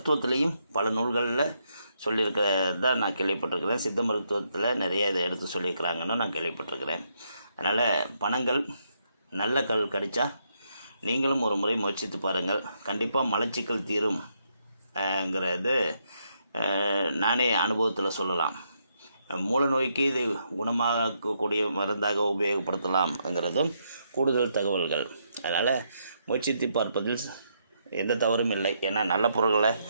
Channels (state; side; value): inverted; both; correlation -0.77